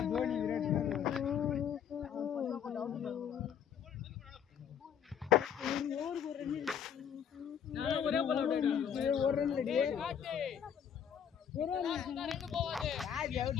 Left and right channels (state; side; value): quieter; right; 8.4 dB